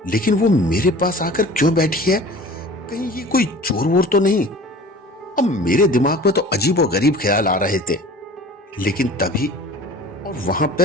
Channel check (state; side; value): normal; both; correlation 0.42